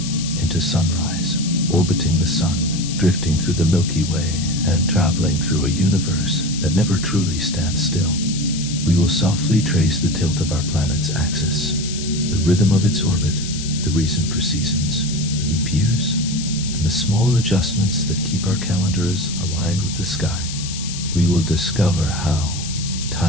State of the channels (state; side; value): noise; left; hiss, 9 dB below the sound